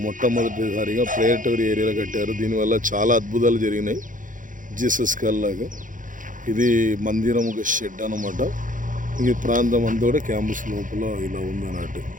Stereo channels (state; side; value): late; left; 0.38 ms